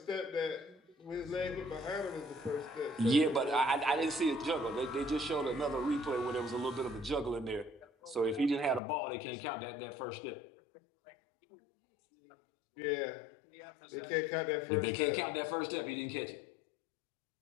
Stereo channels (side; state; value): right; drops out; at 8.8 s